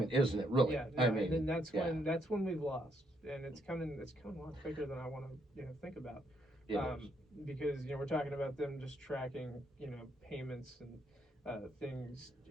isn't it? Really? Yeah, no, I and mean, then that's yeah, when we've lost, and it's coming a lot quicker than I want to think about, it is. because we're talking about them just tracking payments and things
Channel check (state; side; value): normal; both; correlation 0.73